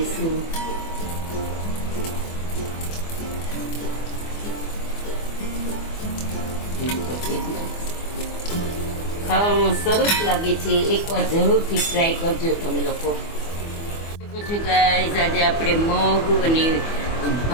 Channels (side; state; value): right; late; 24 ms